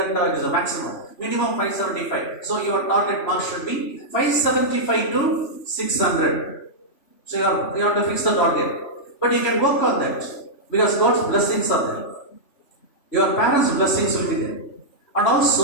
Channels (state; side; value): late; right; 3.1 ms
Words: it is a maximum. Minimum 575. So, your target mark should be 575 to 600. So you have to fix the target. But you can work on that because God's blessings are there. Your parents' blessings will be there. And